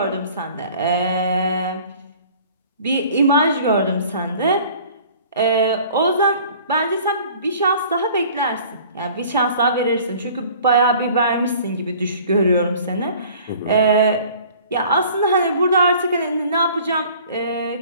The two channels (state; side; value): inverted; both; correlation -0.49